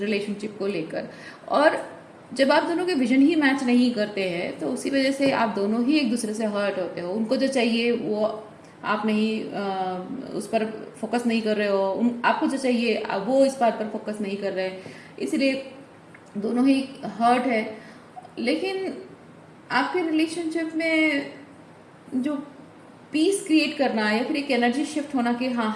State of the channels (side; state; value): both; identical; correlation 1.00